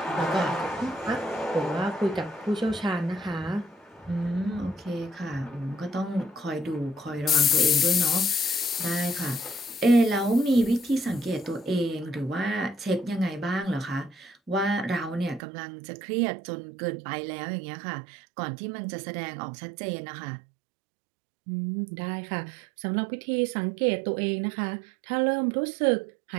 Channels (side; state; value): left; drops out; at 15.4 s